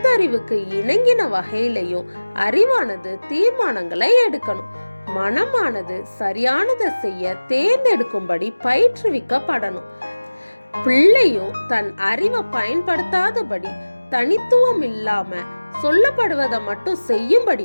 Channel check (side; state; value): both; inverted; correlation -1.00